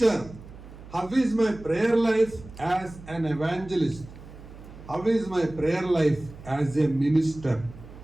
how is my prayer life as an evangelist, how is my prayer life as a minister.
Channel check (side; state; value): right; noise; hum, 17 dB below the sound